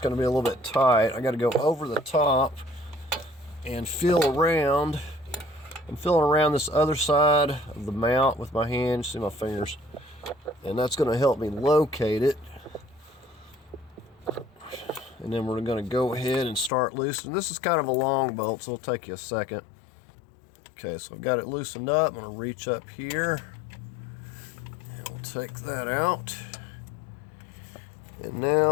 going to be a little bit tight. I got to go over the top and feel around. I'm feeling around this other side of the mount with my hand. See my fingers, and that's going to help me locate it. And then we're going to go ahead and start loosening. This is kind of a long bolt, so it'll take you a second. Okay, so I've got it loosened up. I'm going to reach up here, and we'll take that out. And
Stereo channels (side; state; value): right; drops out; at 16.7 s